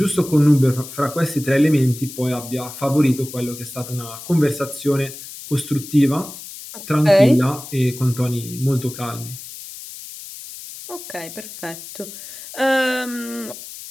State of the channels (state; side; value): noise; left; hiss, 13 dB below the sound